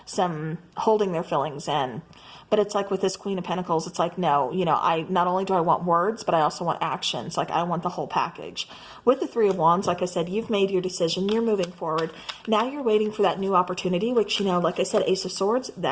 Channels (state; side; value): identical; both; correlation 1.00